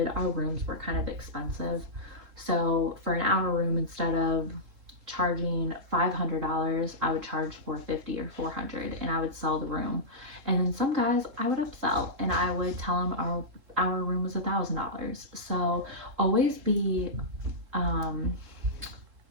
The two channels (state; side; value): late; left; 3.7 ms